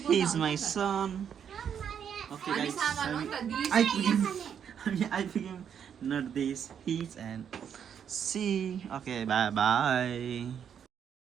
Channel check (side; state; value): left; quieter; 8.2 dB